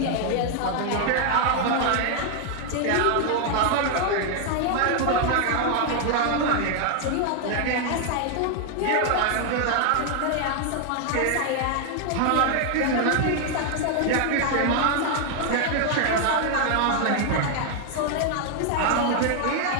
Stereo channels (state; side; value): different; both; correlation 0.00